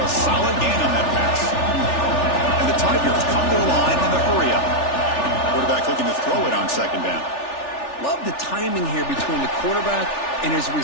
a solid gain on that pass. And the Tigers come to the line in the hurry-up. Quarterback looking to throw it on 2nd down. Love the timing here between the quarterback and his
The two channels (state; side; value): late; right; 3.4 ms